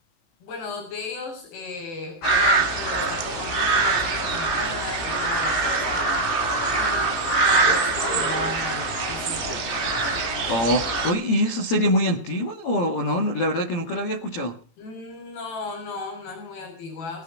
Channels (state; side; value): late; right; 17 ms